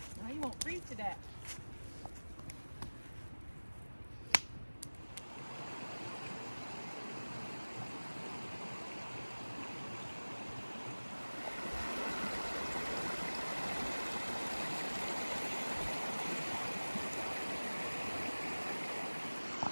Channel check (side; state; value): both; inverted; correlation -1.00